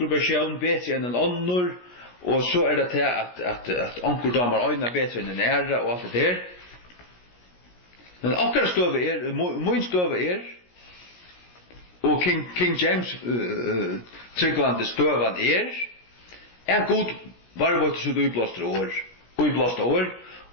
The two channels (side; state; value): right; late; 17 ms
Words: versjon bedre enn en annor, og så det til at onkel damer øyna bedre enn en æra, og alt det der. Men akkurat støve min støve og King James tryggvande støvan god varvårte så utblåste år,